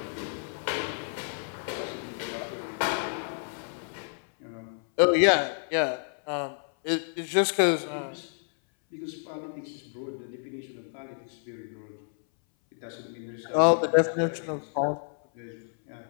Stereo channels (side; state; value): right; silent; 58 dB below the other